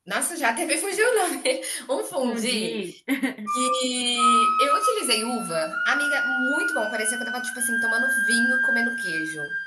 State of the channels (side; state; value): both; identical; correlation 1.00